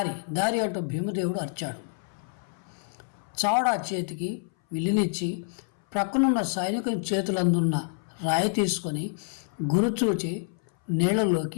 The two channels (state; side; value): silent; right; 59 dB below the other